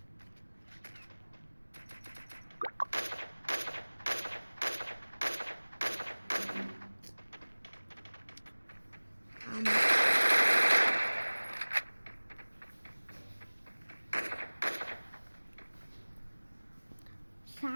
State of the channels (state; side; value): inverted; both; correlation -1.00